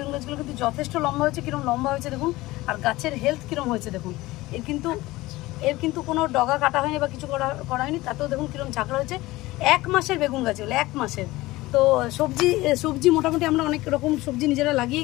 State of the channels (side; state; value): right; quieter; 19.0 dB